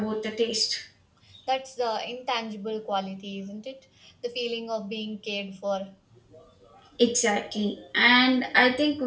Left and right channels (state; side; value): identical; both; correlation 1.00